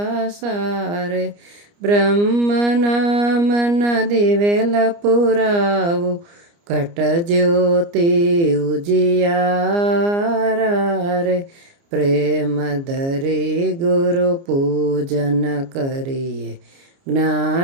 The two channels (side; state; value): left; late; 29 ms